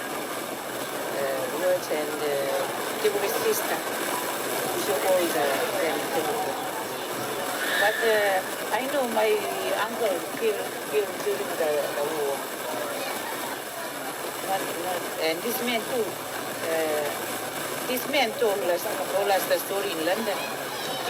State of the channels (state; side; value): identical; both; correlation 1.00